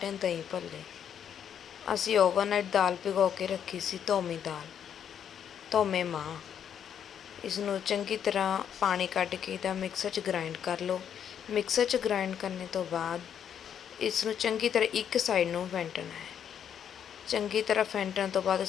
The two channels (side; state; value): right; quieter; 8.7 dB